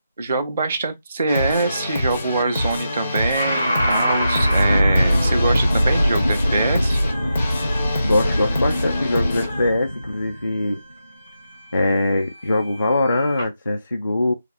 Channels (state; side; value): inverted; both; correlation -0.86